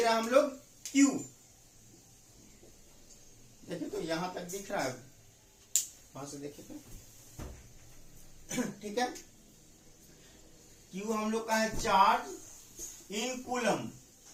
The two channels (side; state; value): both; identical; correlation 1.00